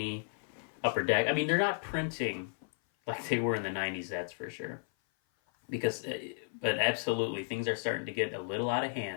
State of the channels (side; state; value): right; silent; 55 dB below the other